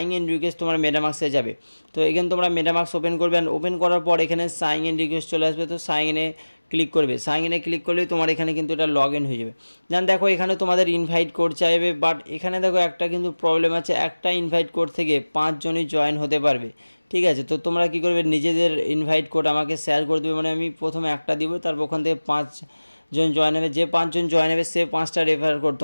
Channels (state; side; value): inverted; both; correlation -1.00